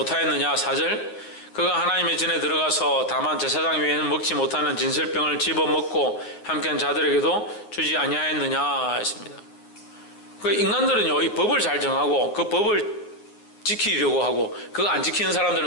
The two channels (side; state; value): right; late; 9.6 ms